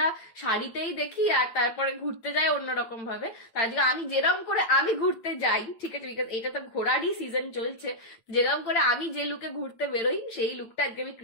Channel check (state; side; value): late; right; 8.9 ms